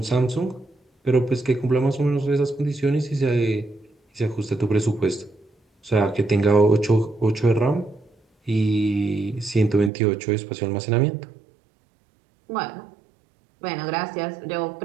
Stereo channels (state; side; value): drops out; left; at 9.9 s